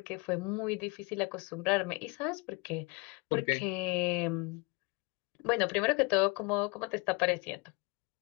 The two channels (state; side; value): quieter; right; 27.9 dB